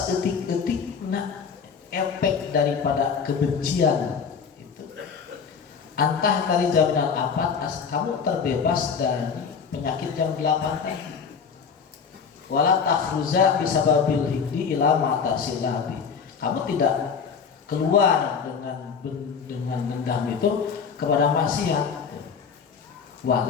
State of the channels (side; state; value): right; quieter; 6.2 dB